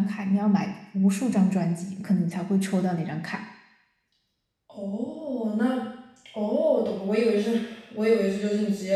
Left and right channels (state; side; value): identical; both; correlation 1.00